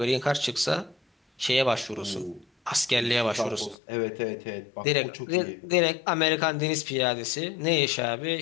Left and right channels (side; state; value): right; drops out; at 3.8 s